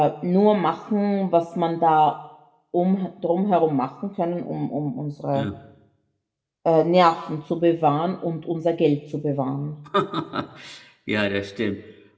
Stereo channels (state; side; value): identical; both; correlation 1.00